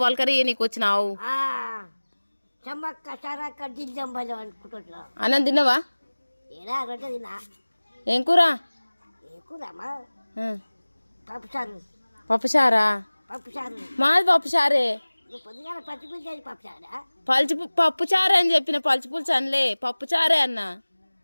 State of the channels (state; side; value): inverted; both; correlation -1.00